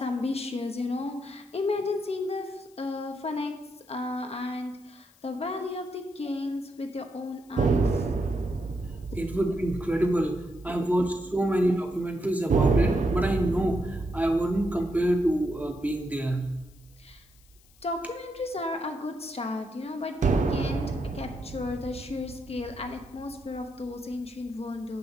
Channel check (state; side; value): noise; left; hiss, 29 dB below the sound